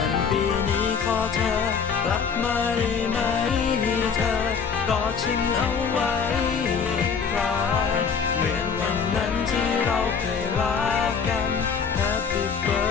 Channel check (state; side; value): quieter; right; 6.2 dB